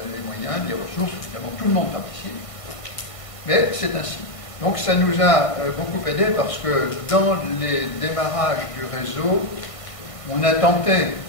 les moyens, les ressources, évidemment tout le monde participe, mais c'est ainsi. Donc ça nous a beaucoup aidé parce que dans les démarrages du réseau, on a tenté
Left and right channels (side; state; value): right; late; 1.5 ms